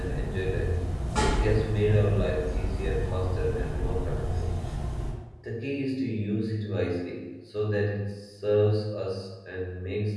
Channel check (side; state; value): both; identical; correlation 1.00